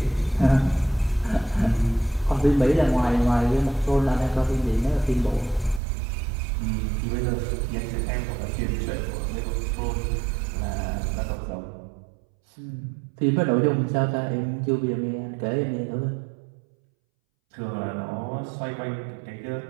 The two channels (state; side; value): drops out; left; at 5.8 s